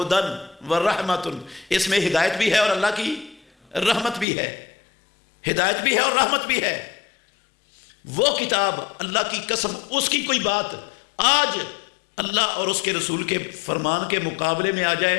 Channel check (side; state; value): right; drops out; at 4.2 s